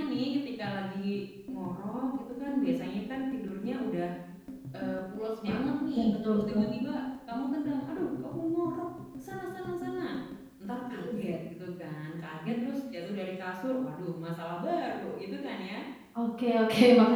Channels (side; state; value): both; identical; correlation 1.00